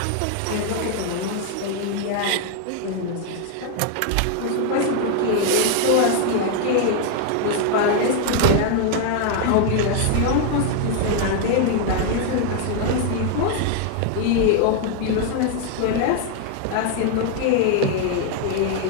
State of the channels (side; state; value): both; different; correlation 0.00